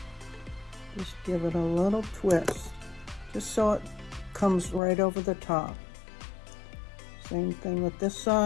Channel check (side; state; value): right; drops out; at 4.8 s